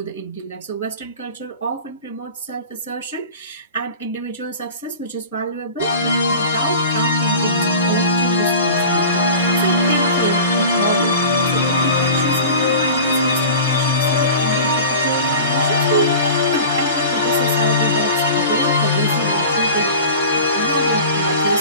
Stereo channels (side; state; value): both; inverted; correlation -0.37